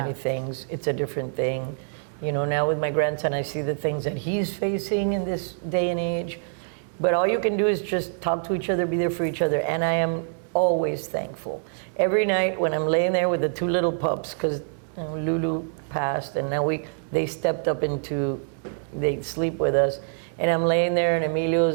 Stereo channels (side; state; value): left; silent; 61 dB below the other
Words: things, it's a different thing. You know, now with my grandson, I see the things that he's facing in this day and age. But all you can do is just talk to each other, be there for each other. And I am always thankful. Every night when I'm laying there with the two little pups, because Lulu passed, and now they stepped up they sleep with us. And I'm laying there and